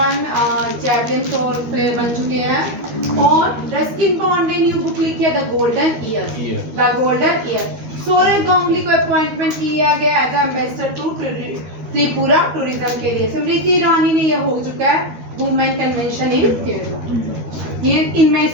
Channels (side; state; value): left; late; 13 ms